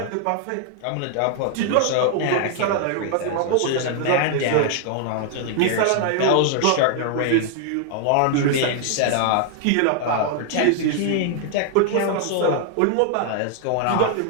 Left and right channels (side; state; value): both; different; correlation 0.00